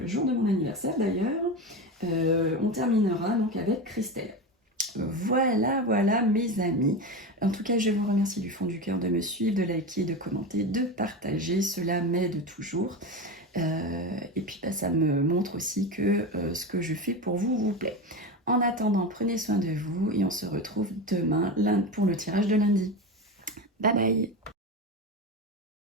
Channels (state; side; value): normal; both; correlation 0.21